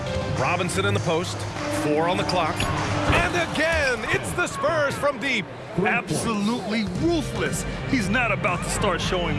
Robinson in the post. 4 on the clock. And again, it's the Spurs from deep. Absolutely ruthless. He's not about to start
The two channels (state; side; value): identical; both; correlation 1.00